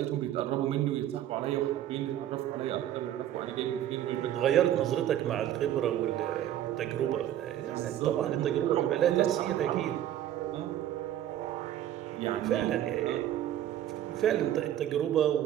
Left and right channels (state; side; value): quieter; left; 11.8 dB